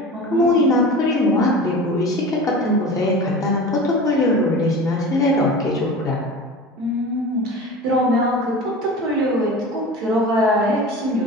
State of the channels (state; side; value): normal; both; correlation 0.34